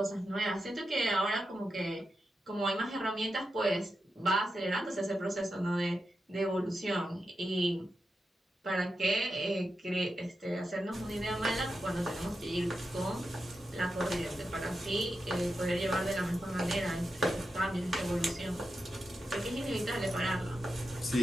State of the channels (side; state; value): both; normal; correlation 0.89